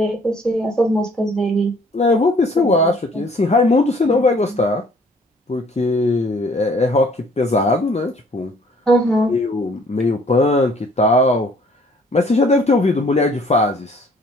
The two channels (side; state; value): both; normal; correlation 0.58